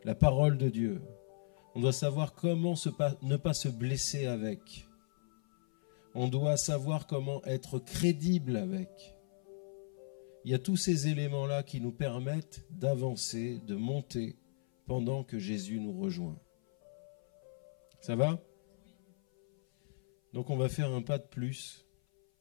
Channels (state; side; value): silent; right; 54 dB below the other